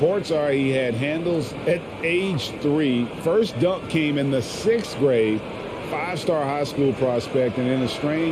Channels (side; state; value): both; identical; correlation 1.00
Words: are he had handles at age 3. First dunk came in the 6th grade. 5-star high school prospect, and in a